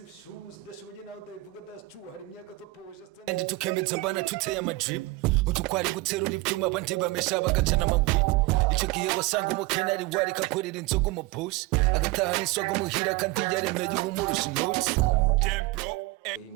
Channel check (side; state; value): left; quieter; 21.5 dB